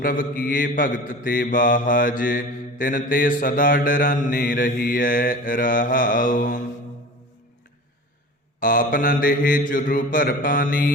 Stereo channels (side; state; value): both; normal; correlation 0.37